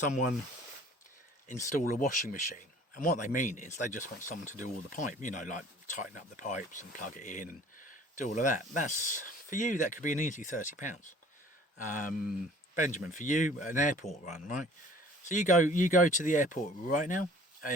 install a washing machine? And what they mean is they just want someone to do all the pipe, you know, like tighten up the pipes and plug it in and do all of that. That's, for you, that could be an easy £30. Benjamin, for you, an airport run, right? So you go to the airport right now,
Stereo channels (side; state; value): both; normal; correlation 0.51